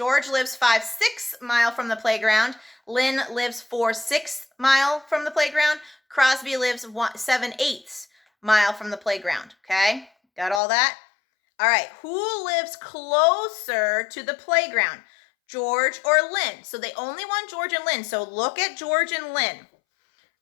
lives 5/6 mile from the playground. Lynn lives 4/6 mile from the playground. Crosby lives 7/8 mile from the playground. Okay, got all that? All right, who lives closer to the playground? George or Lynn? So they only want George and Lynn. So look at George and Lynn.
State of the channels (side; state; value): right; drops out; at 10.6 s